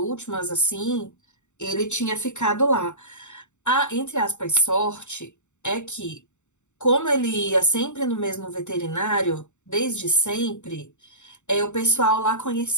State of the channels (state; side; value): late; right; 0.84 ms